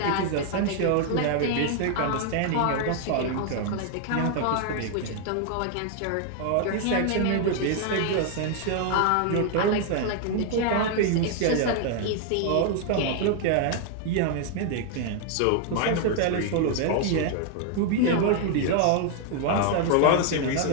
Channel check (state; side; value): different; both; correlation 0.00